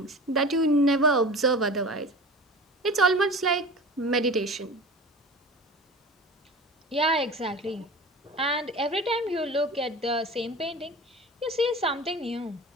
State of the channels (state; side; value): normal; both; correlation 0.36